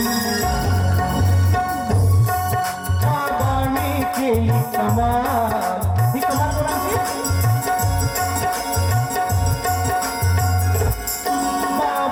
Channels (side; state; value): both; identical; correlation 1.00